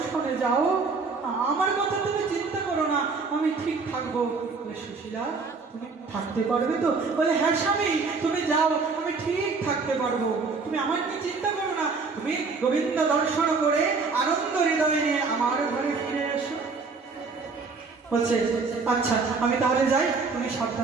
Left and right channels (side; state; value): left; quieter; 4.5 dB